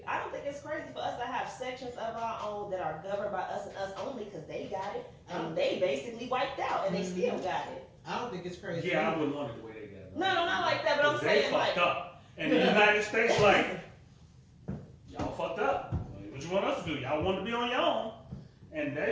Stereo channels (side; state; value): both; identical; correlation 1.00